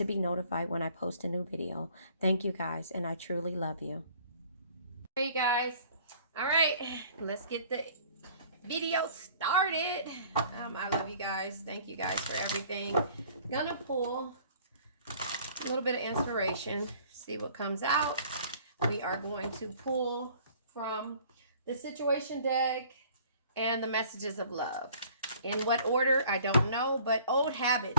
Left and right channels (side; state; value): both; inverted; correlation -0.53